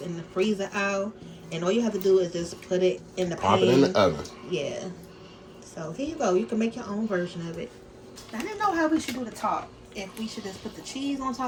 in the freezer aisle. And all you have to do is just put it in the pan. Pop it in the oven. Yeah. So here you go. You can make your own version of it. I didn't know how we should do the top. If we should just put the cheese on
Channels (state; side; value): identical; both; correlation 1.00